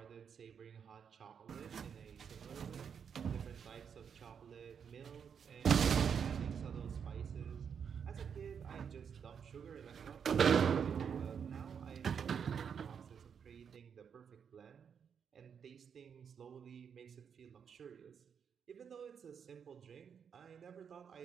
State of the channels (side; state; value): left; quieter; 7.2 dB